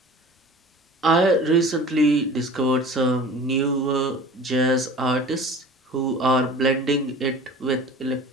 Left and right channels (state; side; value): normal; both; correlation 0.41